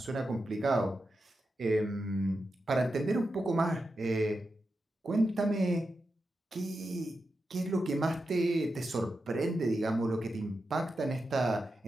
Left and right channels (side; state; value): both; normal; correlation 0.89